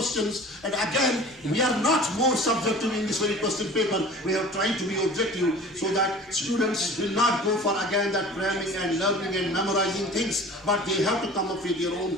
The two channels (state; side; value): noise; right; rumble, 30 dB below the sound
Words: and again, we are not more subjective in this very question paper. We are trying to be objective so that students will not go for again that cramming and learning and memorizing things, but they have to come up with their